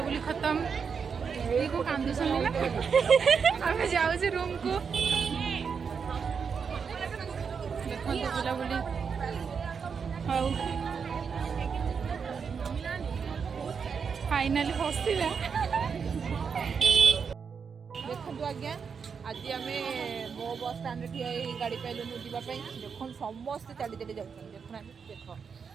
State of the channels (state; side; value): quieter; left; 6.1 dB